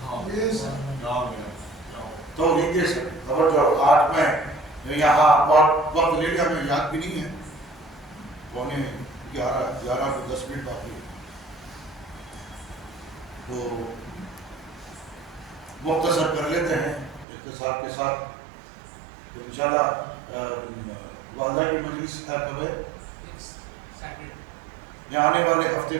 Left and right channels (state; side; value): drops out; left; at 17.2 s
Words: توحید دے سکے. توجہ, آج میں یہاں بہت وقت لے لیا, میں یاد بھی نہیں ہے, 11 کو 10 منٹ باقی ہے, تو مختصر کر لیتے ہیں اختصار کے ساتھ. تو انشاءاللہ وعدہ کی مجلس ہے کب ہے؟ یہ آنے والے ہفتے